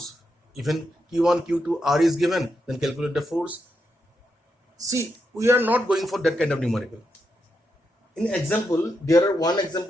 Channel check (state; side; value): normal; both; correlation 0.83